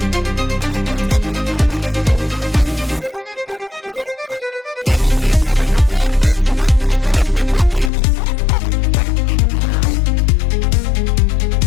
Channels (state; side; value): drops out; right; at 7.9 s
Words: Vi presento la concorrente numero 23, si chiama Greta, abita ad Abano Terme e studentessa alla facoltà di giurisprudenza, anche lei.